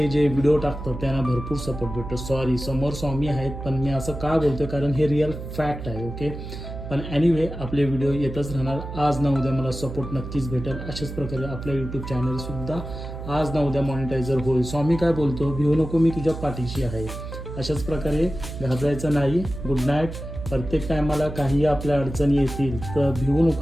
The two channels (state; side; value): noise; right; hum, 9 dB below the sound